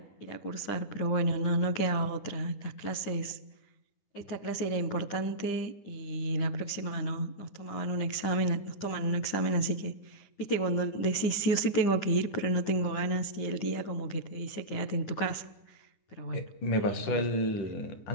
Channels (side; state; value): right; late; 10 ms